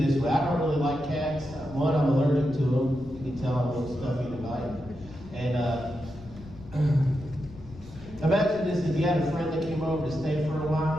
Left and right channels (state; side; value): noise; left; rumble, 17 dB below the sound